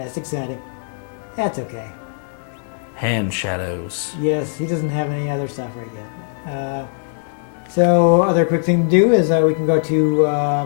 exciting. That's okay. Hand shadows. Yes, he doesn't have any other stuff right yet. So other quick thing to do is we can go to,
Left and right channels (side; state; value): right; silent; 66 dB below the other